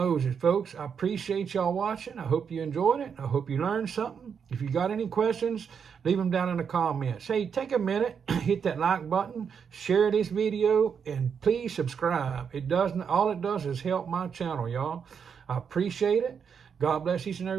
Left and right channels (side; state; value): left; quieter; 6.9 dB